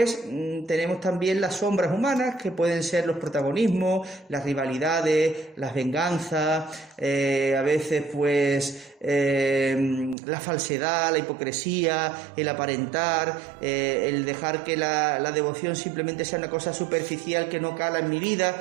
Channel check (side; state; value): left; drops out; at 10.2 s